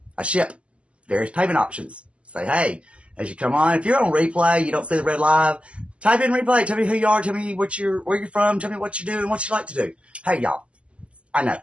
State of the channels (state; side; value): late; left; 0.058 ms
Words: I ship various payment options. Say, hey, as you come on, if you're on replay, you don't see the red live, type in replay. Tell me who you are. Tell me where you're from. Tell me what you do and what you like to do. Hey, y'all. I know.